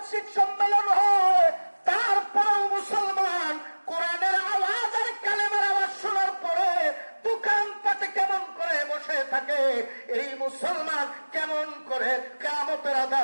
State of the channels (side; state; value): both; inverted; correlation -1.00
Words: সম্মেলন হয়। তারপরেও মুসলমান কোরআনের আওয়াজ আর কালেমার আওয়াজ শোনার পরে দোকানপাটে কেমন করে বসে থাকে, এই মুসলমান কেমন করে কিয়ামতের